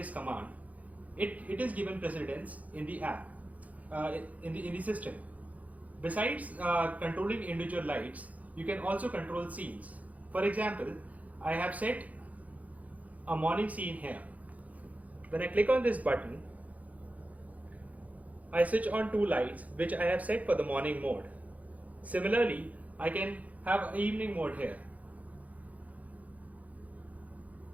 command, it is given precedence in the app, in the system. Besides controlling individual lights, you can also control scenes. For example, I have set a morning scene here. When I click on this button, I switch on 2 lights which I have set for the morning mode. Similarly, I can have an evening mode here.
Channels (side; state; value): left; late; 0.073 ms